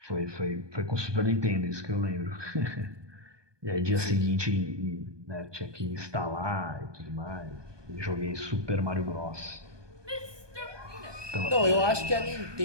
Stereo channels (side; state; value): left; late; 1.2 ms